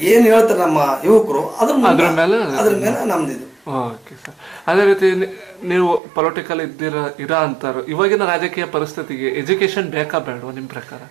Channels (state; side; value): drops out; left; at 6.0 s